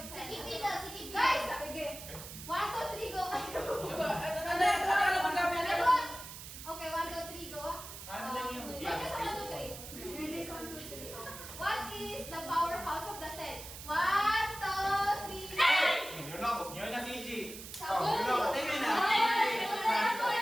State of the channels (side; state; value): right; noise; hiss, 12 dB below the sound